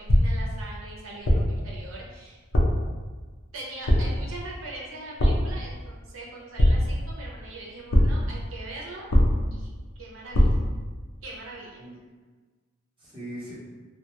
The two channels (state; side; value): normal; both; correlation 0.94